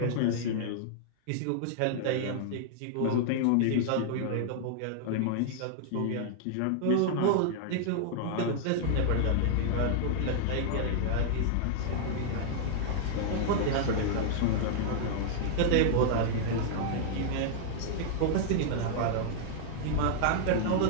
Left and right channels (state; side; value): different; both; correlation -0.01